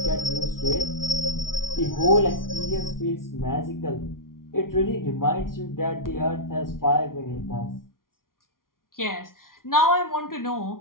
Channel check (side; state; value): right; late; 0.91 ms